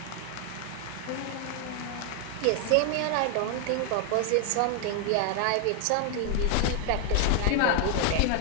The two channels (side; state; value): both; different; correlation 0.00